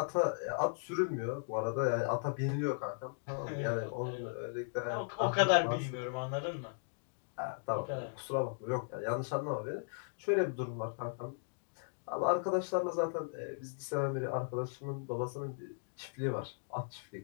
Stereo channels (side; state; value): right; silent; digital silence